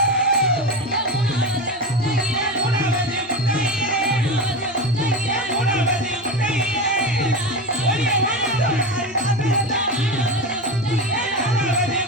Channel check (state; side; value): normal; both; correlation 0.22